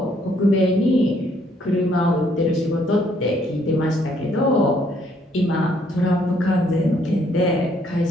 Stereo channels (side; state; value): both; normal; correlation 0.67